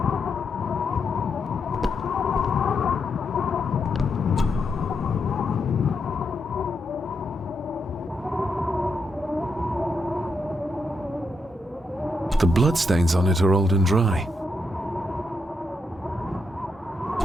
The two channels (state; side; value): normal; both; correlation 0.82